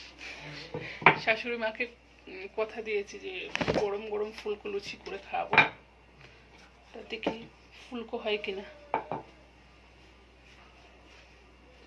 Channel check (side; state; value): both; identical; correlation 1.00